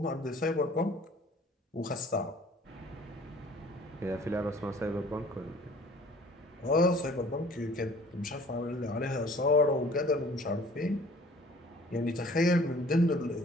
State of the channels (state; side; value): normal; both; correlation 0.52